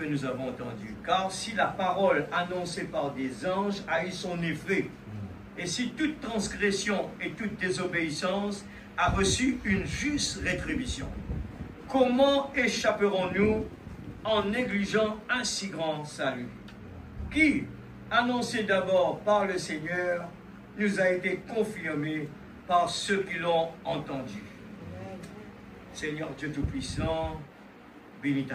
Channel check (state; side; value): identical; both; correlation 1.00